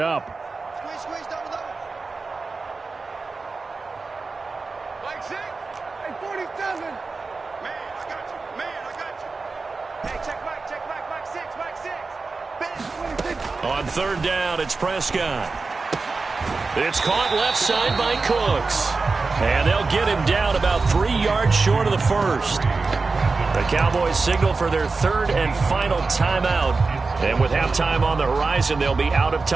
Squeeze, double. Mike 6. Hey, 47. Man, I got you. Hey, check Mike 6. On 3rd down, it's Prescott. It's caught left side by Cooks. And they'll get him down about 3 yards short of the first. The Cowboys signal for their 3rd and final timeout. And with halftime on the horizon, they'll be out of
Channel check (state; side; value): quieter; left; 4.0 dB